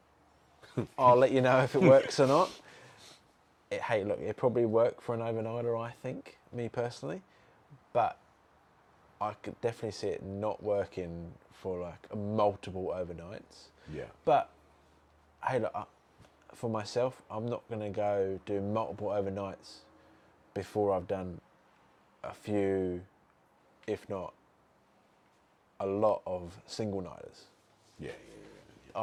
I'll let you know if it works or not. Hey, look, it probably work for an overnighter, I think, me personally. But I could definitely see it not working for like multiple overnights. Yeah. But hey, look, for myself, I'm not going to go do multiple overnights before I've done a few, if not a lot of single nighters. Yeah.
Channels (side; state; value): both; identical; correlation 1.00